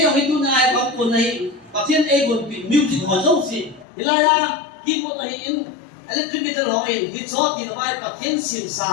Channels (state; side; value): drops out; right; at 3.9 s